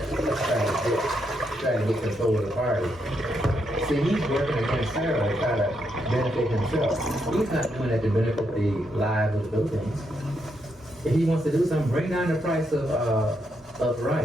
to get control of the party. See, he's working against Sara to try to benefit himself. He's not doing that to benefit the lives of the Philippines. If he wants to do something, bring down the price of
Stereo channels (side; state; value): both; normal; correlation 0.79